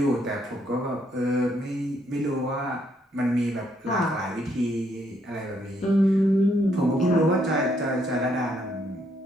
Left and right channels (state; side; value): normal; both; correlation 0.72